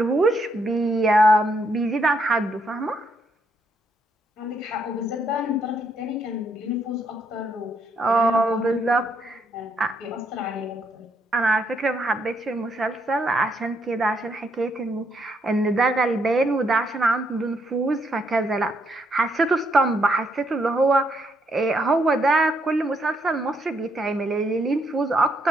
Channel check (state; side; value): normal; both; correlation 0.75